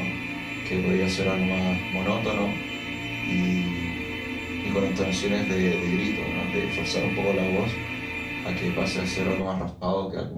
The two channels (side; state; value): both; identical; correlation 1.00